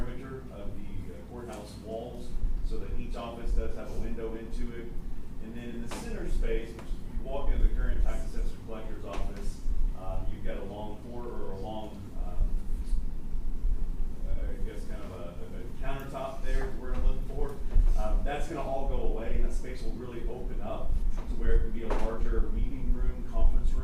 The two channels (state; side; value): identical; both; correlation 1.00